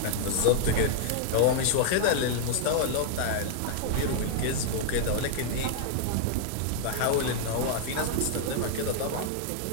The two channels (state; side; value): different; both; correlation 0.00